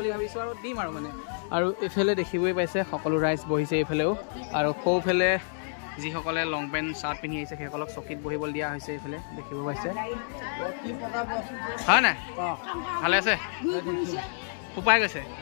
ভাবিছোঁ আৰু দিম আৰু মানে আৰু এইফালে দেখিবই পাইছে সকলো ৰাইজ বহিছে এইফালেও আৰু সৌফালে যিসকলে লং পেণ্ট চাৰ্ট পিন্ধি আহিছে সেইসকলক চকীত বহিবলৈ দিয়া হৈছে এইফালে দেখিব পাইছে হয় নাই ভালে আছে উপায় গৈছে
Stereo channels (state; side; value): silent; right; digital silence